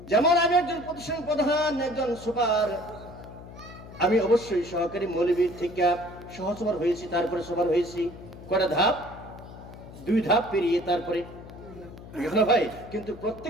যেমন আমি একজন প্রতিষ্ঠান প্রধান, একজন সুপার, আমি অবশ্যই সহকারী মৌলবীর থেকে সহসভার হয়েছি, তারপরে সবার হয়েছি। কটা ধাপ? 2 ধাপ পেরিয়ে তারপরে ভাই। কিন্তু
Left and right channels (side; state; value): left; noise; hum, 16 dB below the sound